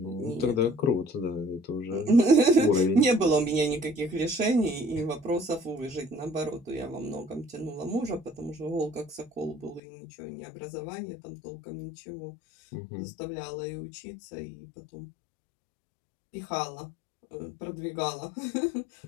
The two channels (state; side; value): drops out; right; at 9.8 s